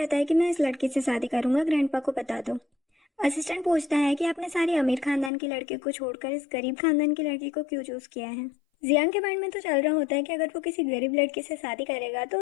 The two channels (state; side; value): drops out; right; at 5.3 s